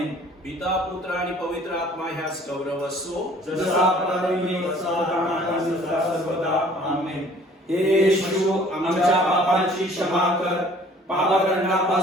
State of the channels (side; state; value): both; normal; correlation 0.54